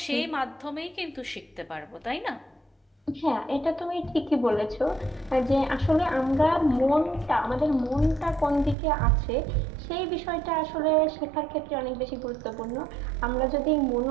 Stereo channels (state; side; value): drops out; left; at 8.8 s